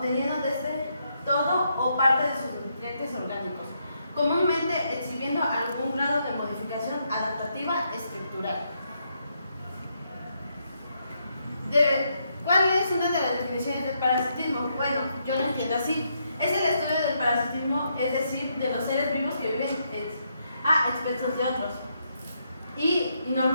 desde todo o parte de sus nutrientes orgánicos, comúnmente exhibiendo algún grado de modificación adaptativa estructural. ¿Cuál es una de las definiciones del parasitismo? Bueno, yo lo entiendo así. Es el estudio del parasitismo, es decir, de los seres vivos que viven a expensas de otros. Y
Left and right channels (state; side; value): inverted; both; correlation -0.78